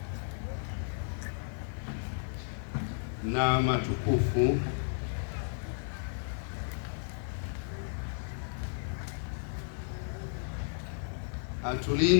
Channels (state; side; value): silent; right; 56 dB below the other